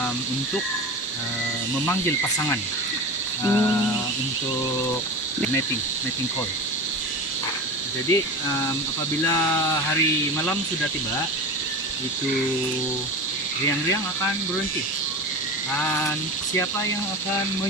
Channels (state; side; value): normal; both; correlation 0.28